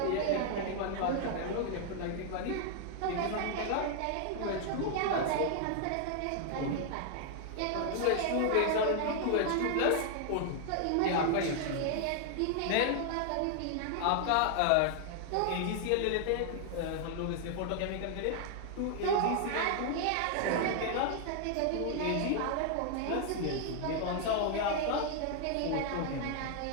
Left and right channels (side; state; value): both; different; correlation 0.00